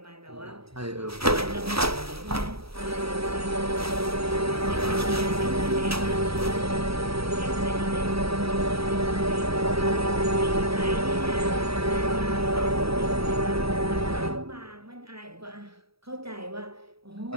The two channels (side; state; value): left; late; 0.77 ms